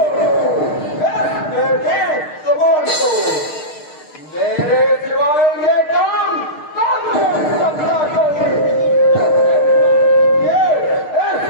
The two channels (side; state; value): right; late; 6.6 ms